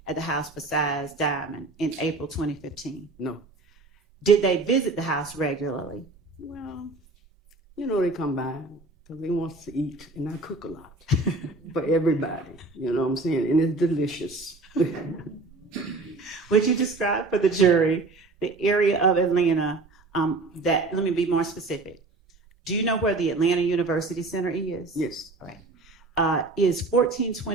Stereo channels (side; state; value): left; quieter; 3.4 dB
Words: at the house besides Diamond in April 2015? No. Did they visit the house regularly? Well, you know, they come by because they want to eat, and I cook a lot for everybody. You know what I'm saying? And it's delicious. Would you describe for the jury the area of Atlanta that, let me be more specific. Do you know where the Atlanta University Center is? Yes. All right. Is